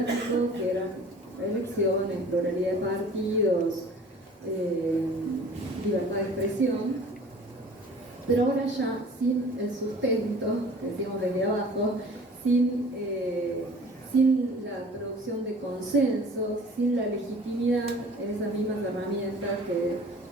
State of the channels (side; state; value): both; normal; correlation 0.47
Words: que eran elecciones, pluralidad de partidos, libertad de expresión, pero ahora ya sin el sustento, que decíamos desde abajo, sin la producción de consensos, sin la legitimidad en esas mismas herramientas que